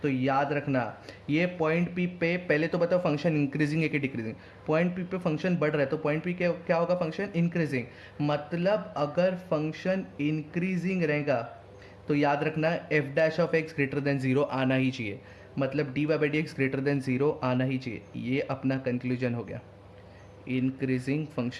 तो याद रखना, ये पॉइंट पी पे पहले तो बताओ फंक्शन इंक्रीजिंग है कि डिक्रीजिंग। पॉइंट पी पे फंक्शन बढ़ रहा है तो पॉइंट पी क्या होगा, फंक्शन इंक्रीजिंग। मतलब अगर फंक्शन इंक्रीजिंग रहेगा तो याद रखना f dash of x greater than zero आना ही चाहिए, मतलब D Y by D x greater than zero आना ही चाहिए। ये अपना कंक्लूजन हो गया इंक्रीजिंग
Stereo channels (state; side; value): identical; both; correlation 1.00